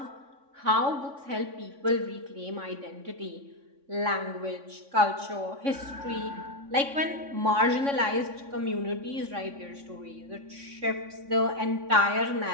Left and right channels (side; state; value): left; late; 3.6 ms